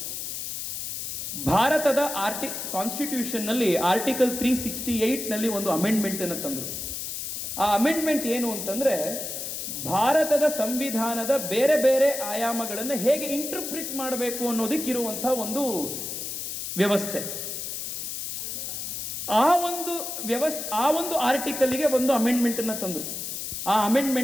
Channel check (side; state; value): left; noise; hiss, 5 dB below the sound